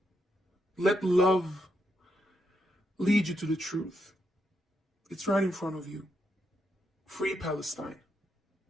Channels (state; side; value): normal; both; correlation 0.80